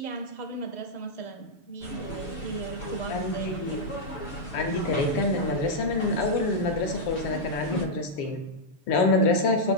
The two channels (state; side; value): late; right; 6.9 ms